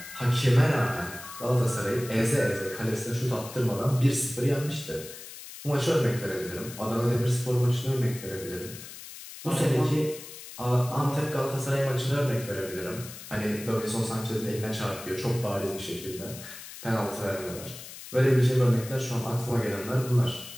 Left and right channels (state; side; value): noise; left; hiss, 14 dB below the sound